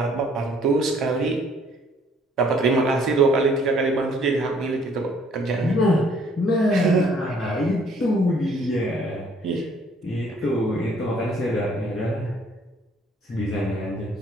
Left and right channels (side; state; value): both; normal; correlation 0.61